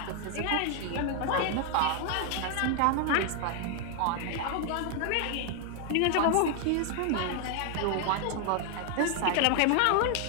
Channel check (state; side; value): different; both; correlation 0.00